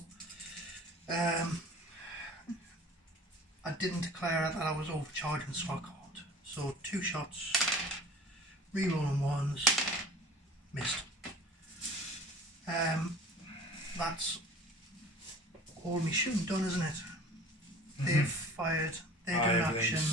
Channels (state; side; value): normal; both; correlation 0.44